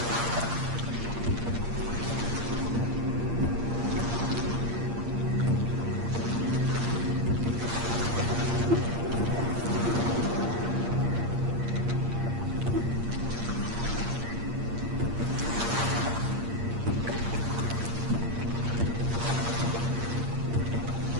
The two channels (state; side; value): late; left; 8.6 ms